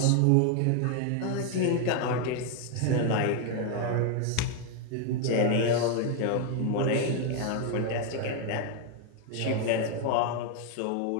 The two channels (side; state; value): both; different; correlation 0.01